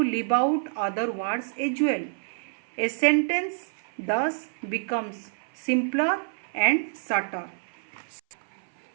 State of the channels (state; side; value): silent; left; 57 dB below the other